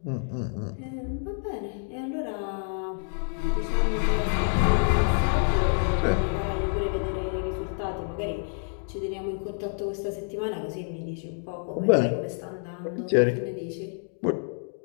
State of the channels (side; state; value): right; silent; 56 dB below the other